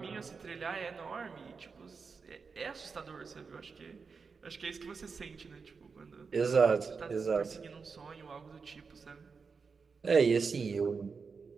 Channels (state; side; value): quieter; left; 5.1 dB